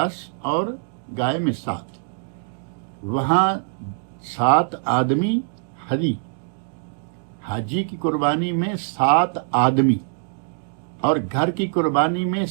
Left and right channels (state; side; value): silent; left; digital silence